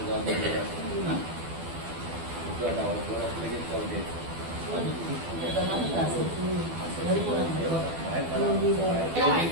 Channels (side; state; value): left; late; 12 ms